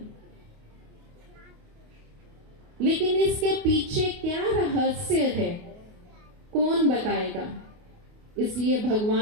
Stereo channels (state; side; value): late; left; 28 ms